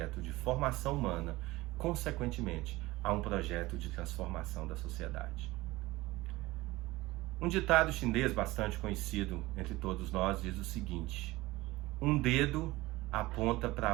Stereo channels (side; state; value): left; quieter; 19.6 dB